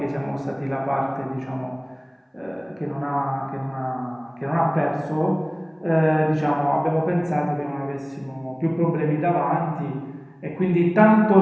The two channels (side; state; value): both; identical; correlation 1.00